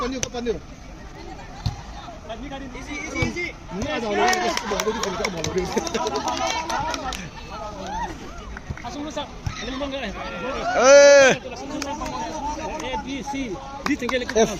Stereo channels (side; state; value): both; identical; correlation 1.00